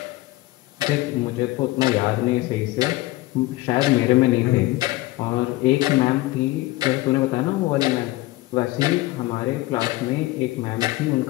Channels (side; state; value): right; quieter; 18.8 dB